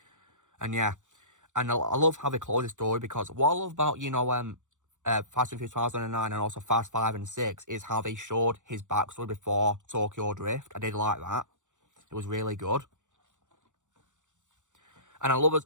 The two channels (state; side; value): late; left; 0.85 ms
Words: And yeah, and I love how they close his story, because what I love about, you know, Fast and Furious 2009 and also Fast 5 and 6 is how they showed his backstory before Tokyo Drift. I did like that. It was really good. And I love,